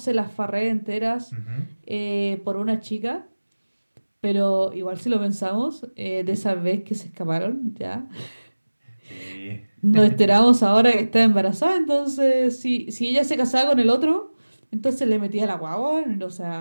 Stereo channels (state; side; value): inverted; both; correlation -1.00